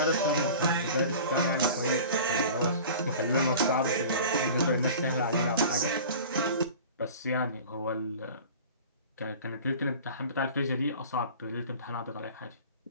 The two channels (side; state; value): both; inverted; correlation -0.40